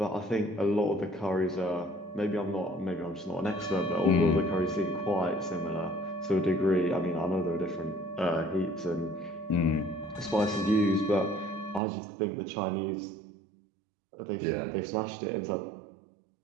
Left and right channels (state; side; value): drops out; left; at 11.8 s